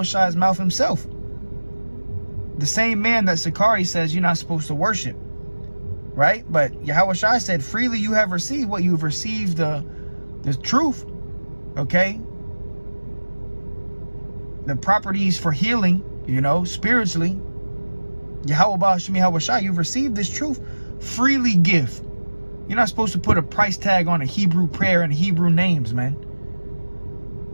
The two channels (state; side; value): inverted; both; correlation -1.00